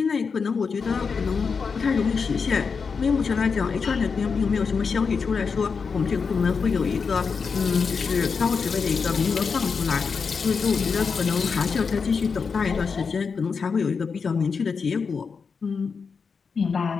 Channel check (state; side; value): quieter; right; 5.4 dB